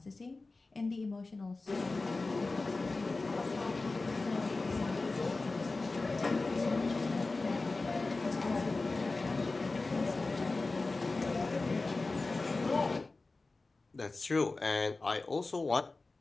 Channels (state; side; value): quieter; right; 3.5 dB